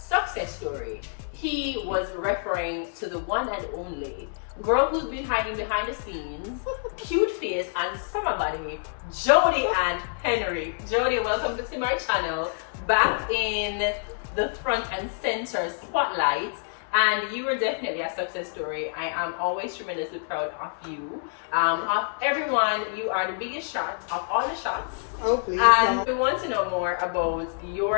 story, he was referring to the one and only girl who's been hiding behind the scenes, cute face and summer body, Jody and Henry. Jody, welcome to my channel, back in the front and center spotlight. And you were definitely a success story. I am always tremendously proud of you. Of everyone, you are the biggest shot of all the shots. Oh, please. And we want to know more about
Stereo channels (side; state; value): right; silent; digital silence